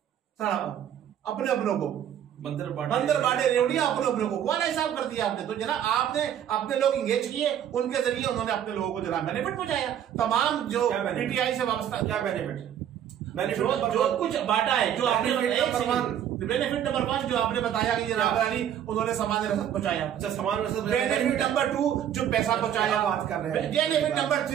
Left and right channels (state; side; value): quieter; left; 10.0 dB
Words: अपने अपनों को, बंदर बाटे रेवड़िया अपने को, वाला हिसाब कर दिया आपने। तो जनाब आपने अपने लोग इंगेज किए, उनके जरिए उन्होंने अपने लोगों को जनाब बेनिफिट पहुंचाया। तमाम जो पीटीआई से वाबस्ता क्या बेनिफिट जो कुछ बांटा है, जो आपने बेनिफिट नंबर 1 जो आपने बताया कि जनाब अली उन्होंने सामान रसद पहुंचाया। अच्छा, सामान रसद। बेनिफिट नंबर 2 जो पैसा पहुंचाया, बात कर रहे हैं। बेनिफिट नंबर